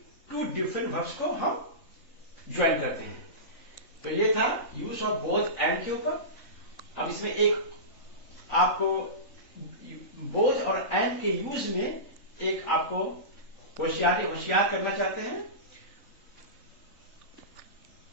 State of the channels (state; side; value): late; right; 3.7 ms